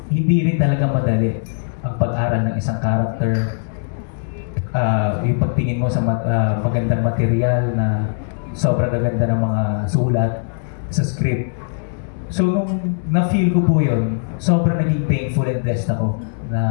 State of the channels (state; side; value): silent; right; digital silence